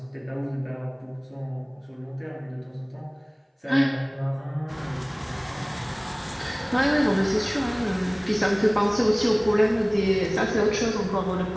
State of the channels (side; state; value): both; identical; correlation 1.00